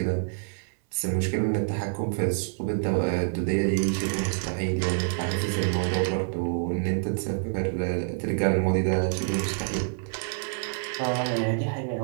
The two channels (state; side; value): silent; left; 60 dB below the other